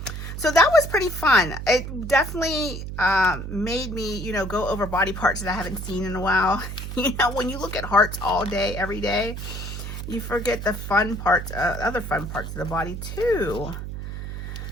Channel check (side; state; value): right; noise; hum, 7 dB below the sound